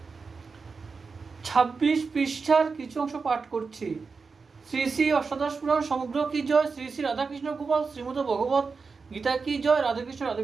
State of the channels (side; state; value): left; quieter; 4.8 dB